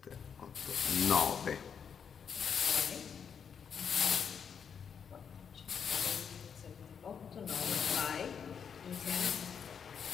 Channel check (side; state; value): right; quieter; 7.1 dB